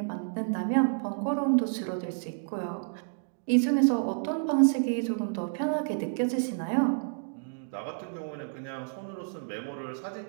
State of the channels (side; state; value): left; silent; digital silence